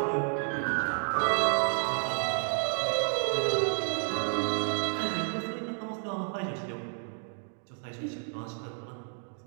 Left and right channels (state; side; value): silent; left; 57 dB below the other